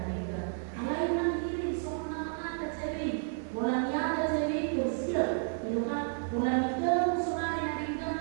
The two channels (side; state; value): left; silent; digital silence